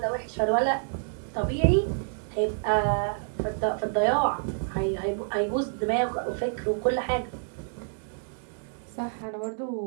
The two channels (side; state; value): left; silent; digital silence